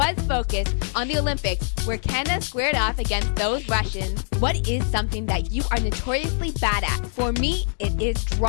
focused on the Olympics, where Canada squared off against those Russians. What is something that you are notoriously bad at? For me, it is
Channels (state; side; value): silent; right; digital silence